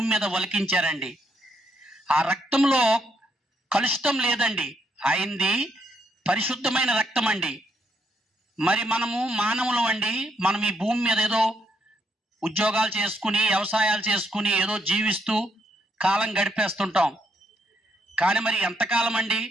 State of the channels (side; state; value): both; normal; correlation 0.75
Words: మీద ఒలికించారండి. ఆ రక్తంలో కలుషితం లేదండి. ఆయనది పరిశుద్ధమైన రక్తం అండి. మరి మనము మానవులం అండి. మనం ఈ భూమి మీద ఏదో ఉద్యోగాలు చేసుకుని వ్యవసాయాలు చేసుకుని ఏదో జీవిస్తూ కాలం గడిపేస్తుంటాం. కానీ మరి ఎంతకాలం అండి?